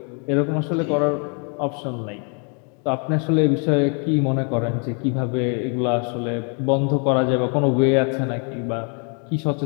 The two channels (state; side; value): quieter; right; 38.7 dB